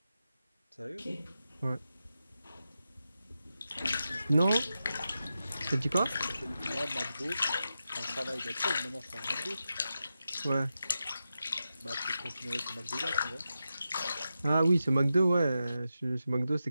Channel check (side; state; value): both; inverted; correlation -0.90